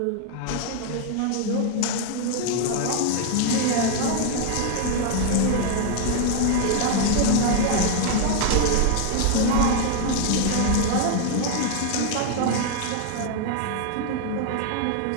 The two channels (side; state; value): both; different; correlation 0.00